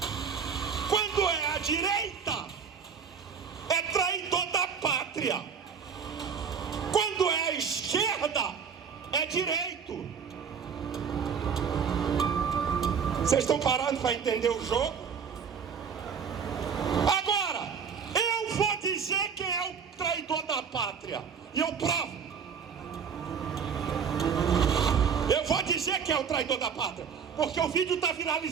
Quando é a direita, é traidor da pátria. Quando é a esquerda, é direito. Vocês estão parando para entender o jogo? Agora, eu vou dizer quem é o traidor da pátria. E eu provo. Eu vou dizer quem é o traidor da pátria, porque o vídeo está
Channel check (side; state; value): left; quieter; 6.7 dB